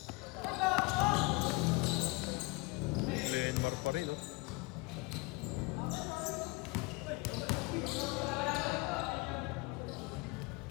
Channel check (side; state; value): right; quieter; 25.2 dB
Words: Lenmar pa rin, oh.